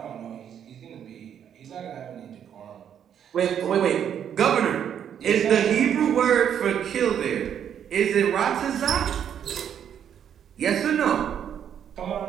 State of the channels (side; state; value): left; quieter; 9.0 dB